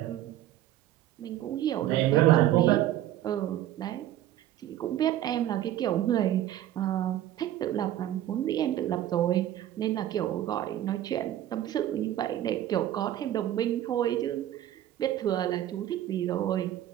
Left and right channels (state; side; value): quieter; left; 12.7 dB